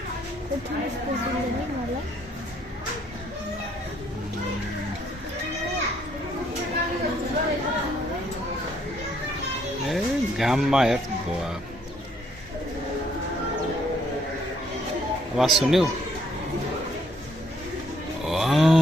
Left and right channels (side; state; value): both; normal; correlation 0.68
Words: घाममा हेर आवाज सुन्यौ